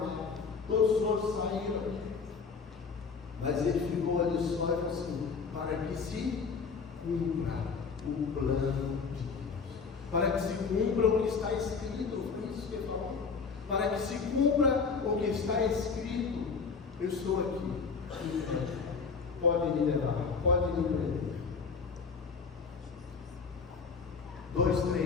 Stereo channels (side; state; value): right; quieter; 5.3 dB